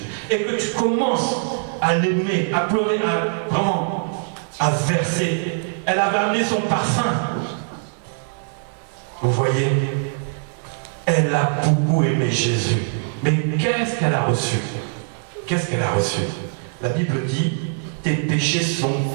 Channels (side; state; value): left; silent; digital silence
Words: et que tu commences à l'aimer, à pleurer, à verser. Elle avait amené son parfum. Vous voyez, elle a beaucoup aimé Jésus. Mais qu'est-ce qu'elle a reçu? Qu'est-ce qu'elle a reçu? La Bible dit, tes péchés sont